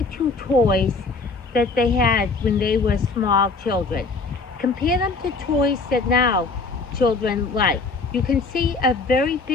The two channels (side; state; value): right; quieter; 4.0 dB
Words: two toys that they had when they were small children. Compare them to toys that now children like. You can see a very